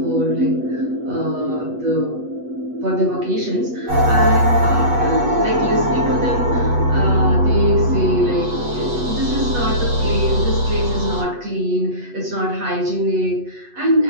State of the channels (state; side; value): late; left; 8.2 ms